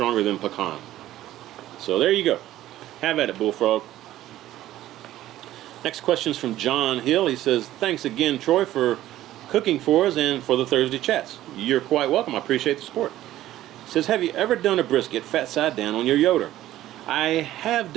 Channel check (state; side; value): quieter; left; 14.1 dB